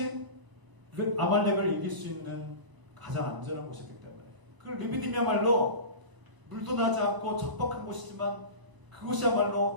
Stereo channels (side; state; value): left; late; 1.0 ms